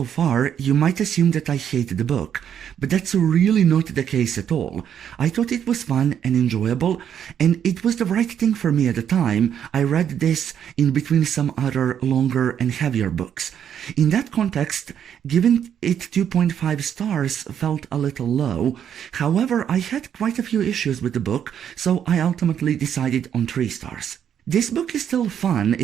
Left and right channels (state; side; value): quieter; left; 9.0 dB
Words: far, you might assume that I hate the book, but that's really not the case at all. I thought it was fun and enjoyable, and it was the right thing for me at the time. I read this in between some other longer and heavier books. In that context, giving it 2.5 stars felt a little low. However, I had quite a few issues with the book, so I ultimately decided on 3 stars. This book is still fun.